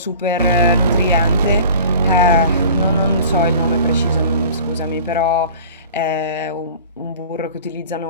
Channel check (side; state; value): both; inverted; correlation -0.43